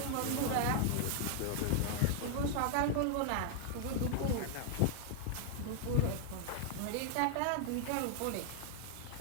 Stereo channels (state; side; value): different; both; correlation 0.00